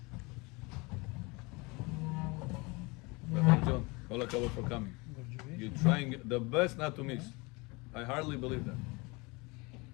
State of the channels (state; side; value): quieter; right; 26.4 dB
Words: John, all הכבוד for coming. You're trying the best not to miss. I hardly believe that.